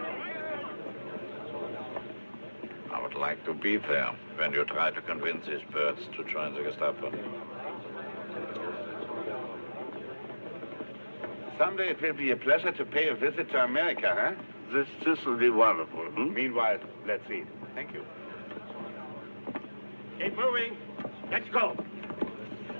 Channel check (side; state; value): both; inverted; correlation -1.00